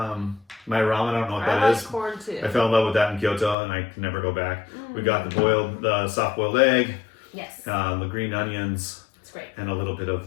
my ramen. I don't know what that is. I like corn too. I fell in love with that in Kyoto, and I can never go back. We got the soft boiled egg. Yes. The green onions. It's great. And a little bit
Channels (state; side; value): drops out; right; at 3.6 s